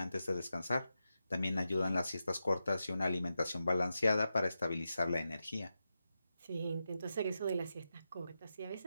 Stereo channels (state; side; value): inverted; both; correlation -0.89